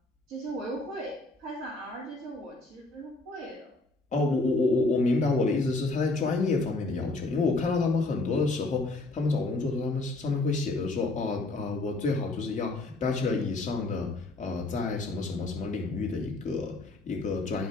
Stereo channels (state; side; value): quieter; right; 3.1 dB